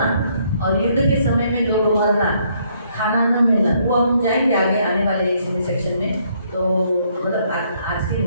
और युद्ध के समय में लोग मरना, खाना न मिलना, वो हम जाएंगे आगे आने वाले इस सेक्शन में। तो मतलब आज के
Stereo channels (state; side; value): inverted; both; correlation -0.69